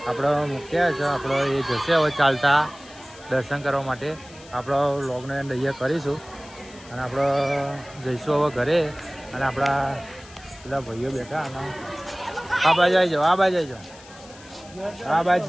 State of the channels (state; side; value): noise; left; hiss, 21 dB below the sound